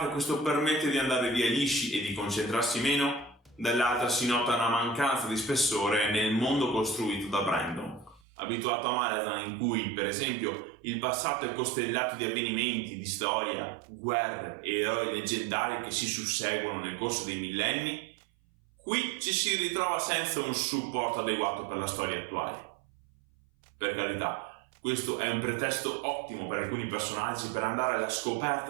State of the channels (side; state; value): left; drops out; at 8.2 s